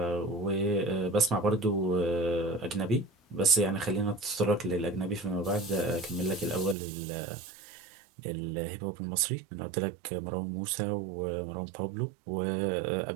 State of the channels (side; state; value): left; drops out; at 6.8 s